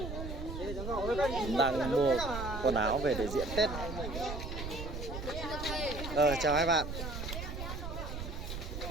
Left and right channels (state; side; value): noise; right; rumble, 6 dB below the sound